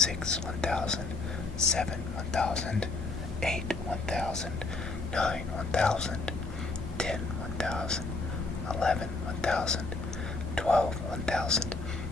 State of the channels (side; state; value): right; quieter; 3.6 dB